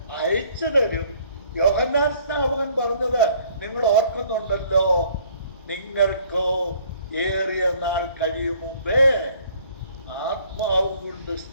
അയച്ചു തരും. യോഹന്നാൻ സ്നാപകൻ പറഞ്ഞത് നിങ്ങൾ ഓർക്കുന്നുണ്ടല്ലോ, നിങ്ങൾക്കോ ഏറിയ നാൾ കഴിയും മുമ്പേ ആത്മാവ് കൊണ്ട്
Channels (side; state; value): both; inverted; correlation -0.59